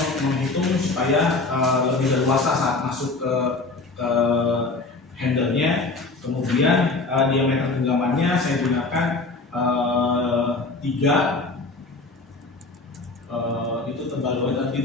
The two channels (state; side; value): quieter; right; 3.5 dB